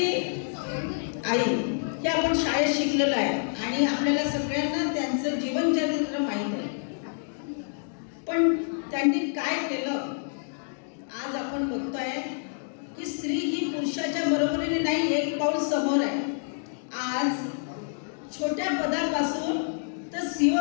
आई हे आपण शाळेत शिकलेलं आहे आणि आपल्याला सगळ्यांना त्यांचं जीवनचरित्र माहीत आहे. पण त्यांनी काय केलं आज आपण बघतोय की स्त्री ही पुरुषाच्या बरोबरीने नाही, एक पाऊल समोर आहे. आज छोट्या पदापासून तर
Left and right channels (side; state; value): right; silent; digital silence